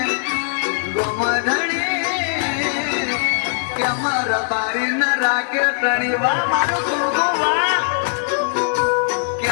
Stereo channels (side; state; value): right; silent; 66 dB below the other